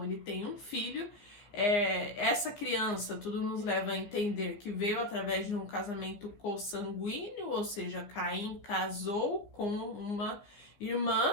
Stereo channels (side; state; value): right; late; 15 ms